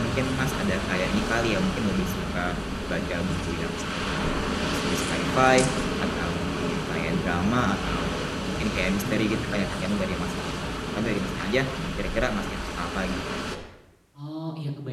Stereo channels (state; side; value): identical; both; correlation 1.00